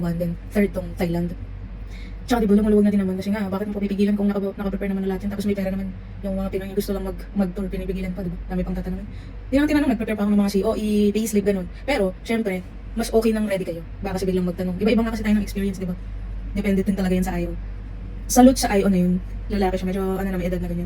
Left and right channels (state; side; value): identical; both; correlation 1.00